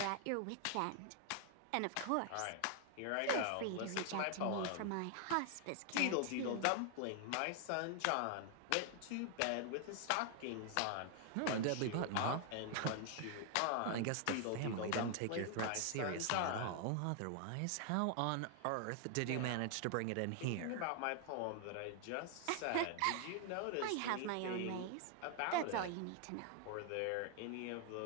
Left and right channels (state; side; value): different; both; correlation 0.00